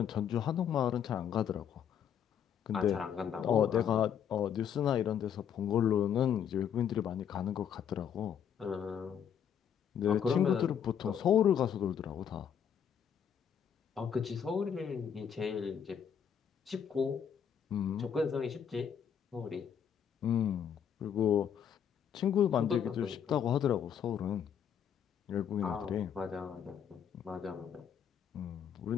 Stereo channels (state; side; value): quieter; right; 8.3 dB